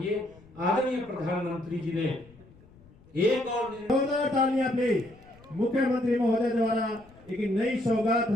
आदरणीय प्रधानमंत्री जी ने एक और जोरदार तालियां प्लीज मुख्यमंत्री महोदय द्वारा एक नई सौगात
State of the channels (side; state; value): left; noise; rumble, 25 dB below the sound